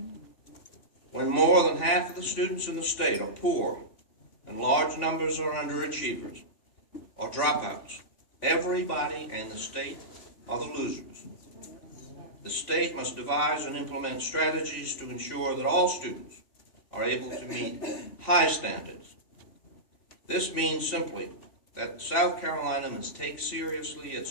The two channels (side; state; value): right; late; 3.5 ms